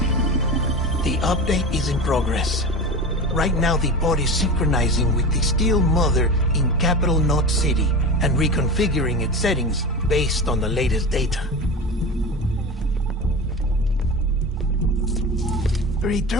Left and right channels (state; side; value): normal; both; correlation 0.28